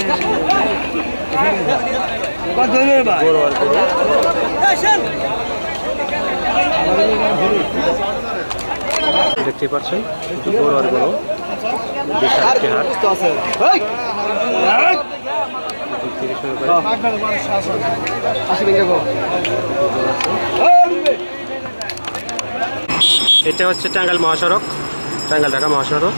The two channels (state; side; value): inverted; both; correlation -1.00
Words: দেখতে পাচ্ছেন বড় আর বড় বিশাল একটি হাট থেকে শুরু করে এটা হচ্ছে টাঙ্গাইল মহাসড়ক টাঙ্গাইল ঢাকা মহাসড়ক